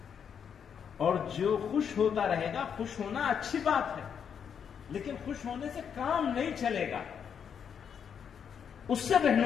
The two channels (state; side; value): quieter; right; 7.5 dB